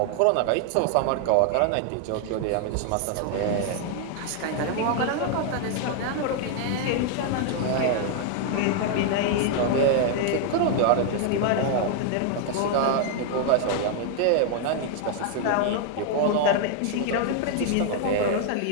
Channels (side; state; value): both; different; correlation 0.00